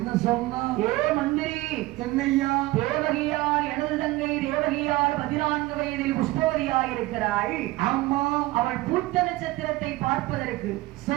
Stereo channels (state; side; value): quieter; left; 19.2 dB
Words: சொன்னா? ஏ மந்திரி, என்னையா? தேவகியார் எனது தங்கை தேவகியார் 14 வயதில் புஷ்பவதியாய் இருக்கிறாள். ஆமா. அவள் பூத்த நட்சத்திரத்தை பார்ப்பதற்கு